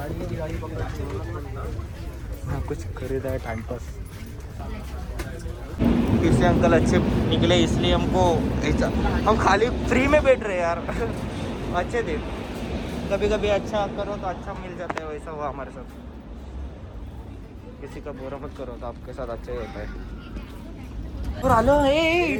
हाँ कुछ खरीदा है टाइम पास. इससे अंकल अच्छे निकले इसलिए हमको ऐसा, हम खाली फ्री में बैठ रहे यार. अच्छे थे. कभी कभी अच्छा करो तो अच्छा मिल जाता है. वैसा हुआ हमारे साथ. किसी का बुरा मत करो तो आपके साथ अच्छा ही होता है. और आलो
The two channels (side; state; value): both; identical; correlation 1.00